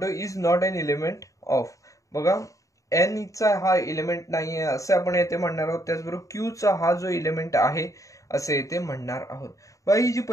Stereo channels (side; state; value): right; late; 0.16 ms